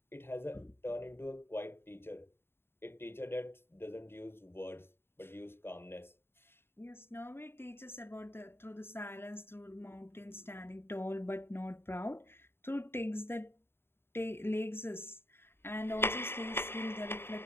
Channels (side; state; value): right; late; 0.11 ms